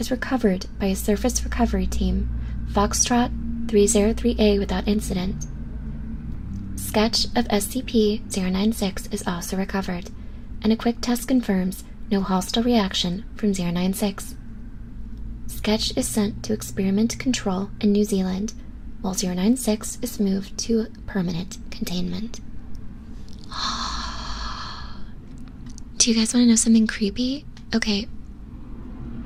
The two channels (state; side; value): identical; both; correlation 1.00